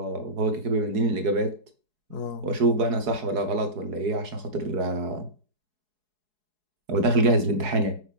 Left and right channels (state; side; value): late; left; 4.7 ms